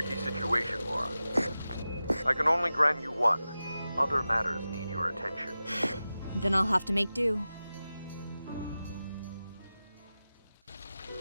situation, Laura. I can only grant you one. Other matters need your attention. Then I'll have to make do.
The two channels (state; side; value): inverted; both; correlation -0.94